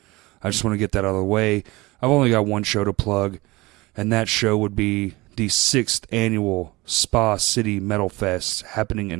I just want to get that out of the way. I've only got one show to plug, and that show would be the 6th annual Spa City Metal Fest happening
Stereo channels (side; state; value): left; quieter; 21.8 dB